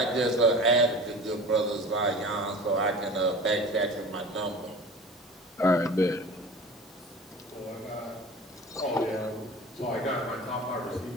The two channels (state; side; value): normal; both; correlation 0.37